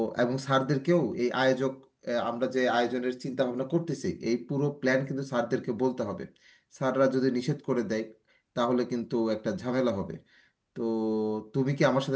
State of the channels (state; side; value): identical; both; correlation 1.00